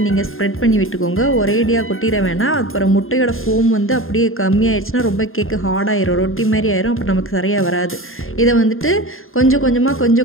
நீங்கள் ஸ்ப்ரெட் பண்ணி விட்டுக்கோங்க. ஒரேடியாக கொட்டிட வேணாம். அப்புறம் முட்டையோட ஃபோம் வந்து அப்படியே கம்மியாயிடுச்சுன்னா ரொம்ப கேக்கு ஹார்டாயிரும், ரொட்டி மாதிரி ஆயிரும். அப்புறம் நமக்கு சரியாக வராது. இதை வந்துட்டு கொஞ்சம்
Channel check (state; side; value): late; right; 0.60 ms